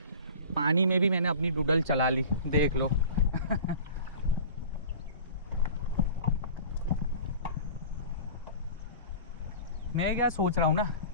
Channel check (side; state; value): both; inverted; correlation -0.40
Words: पानी में भी मैंने अपनी डूडल चला ली, देख लो मैं क्या सोच रहा हूँ ना,